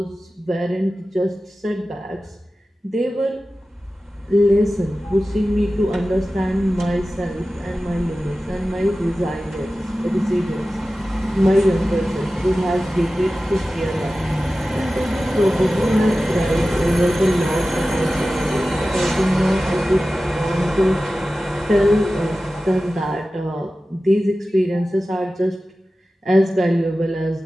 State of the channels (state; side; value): normal; both; correlation 0.95